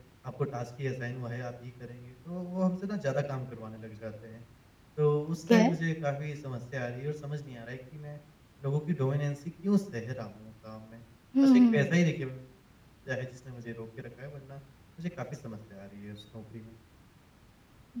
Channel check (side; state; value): both; identical; correlation 1.00